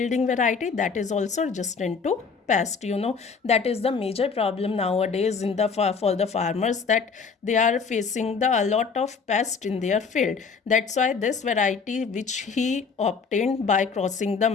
variety that is also resistant to pest. That is the major problem nowadays in the for the farmers, that they are facing a lot of pest in their field. That's why this variety which he obtained by crossing the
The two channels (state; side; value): quieter; right; 5.4 dB